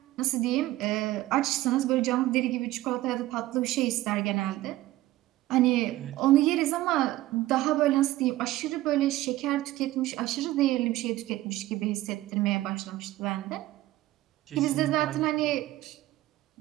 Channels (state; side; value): quieter; left; 16.3 dB